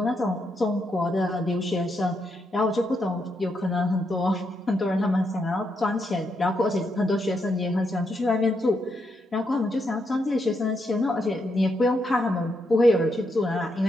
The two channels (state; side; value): normal; both; correlation 0.80